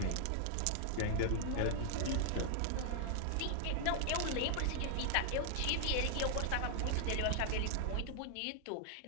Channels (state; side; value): different; both; correlation 0.00